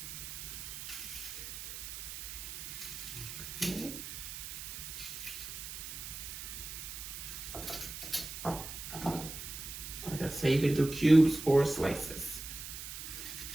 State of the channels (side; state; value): right; noise; hiss, 8 dB below the sound